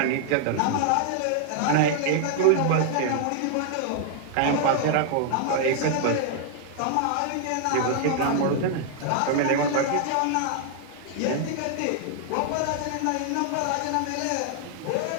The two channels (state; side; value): different; both; correlation 0.00